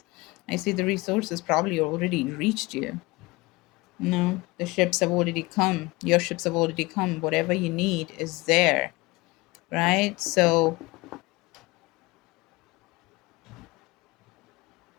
I see the resources probably already reached you. No, the ships have already come. Your ships have already come. Whatever you need is there, right? So,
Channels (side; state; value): right; quieter; 22.8 dB